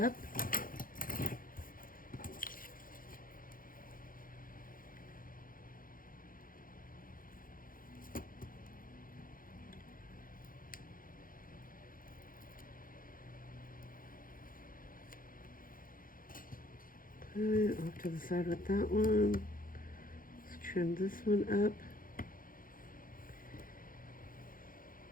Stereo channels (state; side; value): late; right; 0.40 ms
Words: Okay, off to the side with that one. Let's trim this one up.